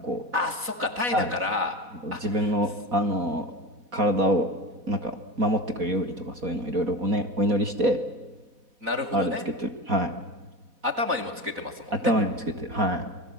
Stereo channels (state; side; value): late; left; 4.0 ms